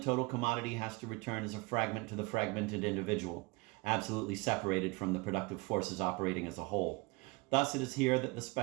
total commodity has to return as a fragment to the fragmented individual, absolutely separated from the productive forces operating as a whole. Thus, it is here that the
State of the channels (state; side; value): quieter; left; 25.6 dB